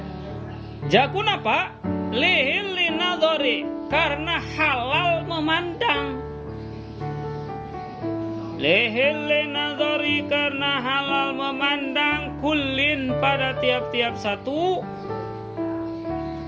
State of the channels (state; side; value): identical; both; correlation 1.00